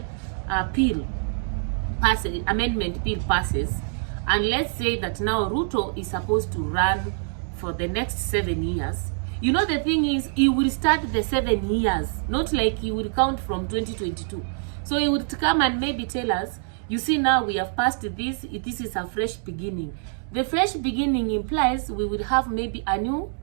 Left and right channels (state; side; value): silent; left; 62 dB below the other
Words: amendment bill passes, and let's say that now Ruto is supposed to run for the next 7 years. You know, the thing is, he will start the 7 years, not like he will count from 2022. So he would come and maybe tell us, You see, now we have passed this. This is a fresh beginning. The fresh beginning implies we will have maybe a new